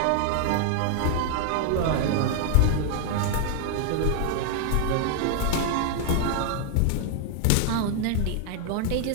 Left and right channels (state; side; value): different; both; correlation 0.00